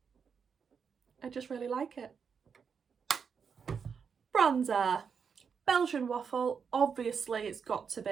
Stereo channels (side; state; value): left; quieter; 6.4 dB